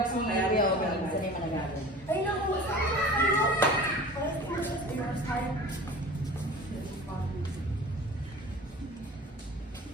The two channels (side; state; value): both; normal; correlation 0.39